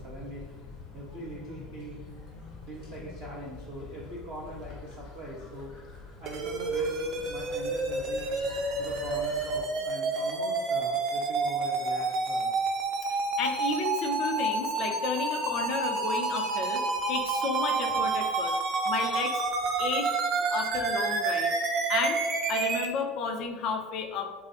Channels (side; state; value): both; normal; correlation 0.40